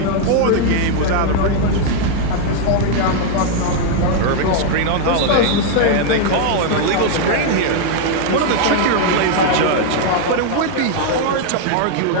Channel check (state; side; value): different; both; correlation 0.00